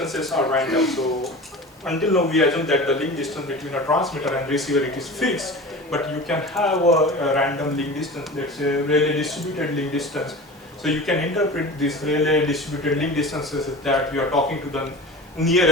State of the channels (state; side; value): normal; both; correlation 0.34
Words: are random. So until now we assume that the link distance between a transmitter and receiver it is fixed, but you can have a random link distance, let's say Rayleigh distributed link distance. So you can interpret this Rayleigh distributed link distances as that you are talking to the